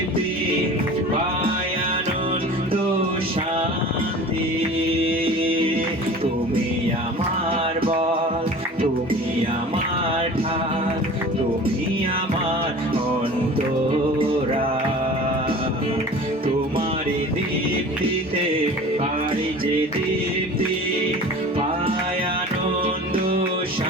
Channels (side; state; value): both; normal; correlation 0.40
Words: পাই আনন্দ শান্তি। তুমি আমার বল, তুমি আমার ঢাল, তুমি আমার অন্তরাল। তোমার দীপ্তিতে পাই যে দীপ্তি, পাই আনন্দ